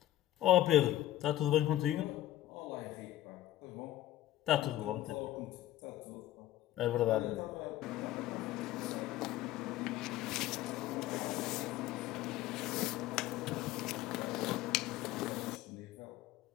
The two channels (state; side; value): quieter; right; 14.2 dB